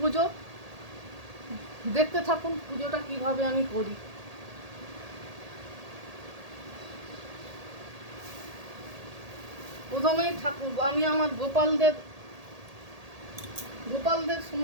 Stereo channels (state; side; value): late; left; 1.8 ms